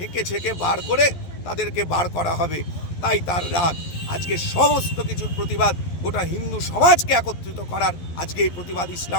ছেঁকে বার করে তাদেরকে বার করা হবে, তাই তার রাগ। আজকে সমস্ত কিছুর প্রতিবাদ গোটা হিন্দু সমাজকে একত্রিত করার আজকে এই প্রতিবাদ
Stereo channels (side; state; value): right; late; 11 ms